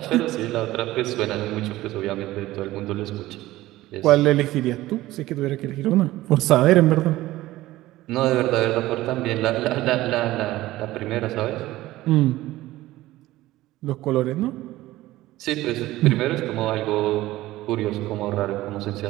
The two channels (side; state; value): left; quieter; 16.7 dB